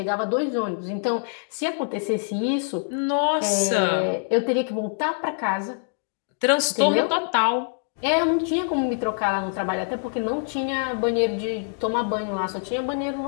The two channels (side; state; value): right; silent; digital silence